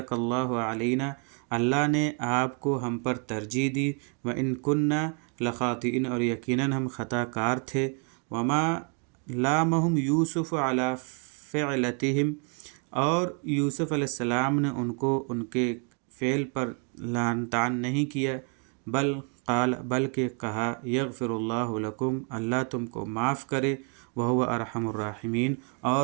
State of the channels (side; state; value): left; quieter; 39.9 dB